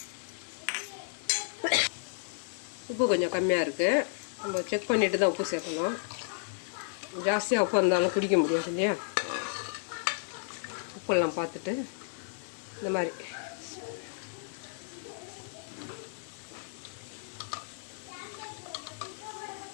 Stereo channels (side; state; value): right; silent; digital silence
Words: உப்பு கொஞ்சம் கம்மியாக இருக்குது, நம்ம செக் பண்ணிவிட்டு தான் உப்பு சேர்க்கணும். ஜாஸ்தியாக உப்பு இருந்தாலும் குடிக்க முடியாது இல்லையா. உப்பெல்லாம் பார்த்துட்டு இந்த மாதிரி